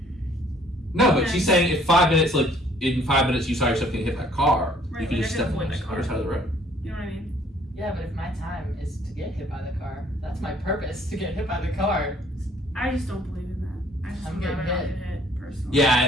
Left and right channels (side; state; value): both; normal; correlation 0.60